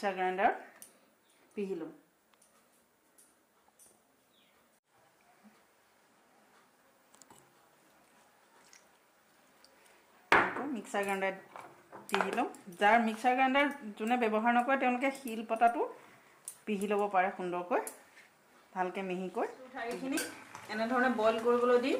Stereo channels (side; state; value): both; identical; correlation 1.00